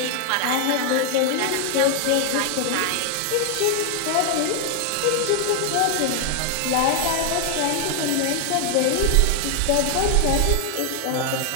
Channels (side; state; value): both; different; correlation 0.00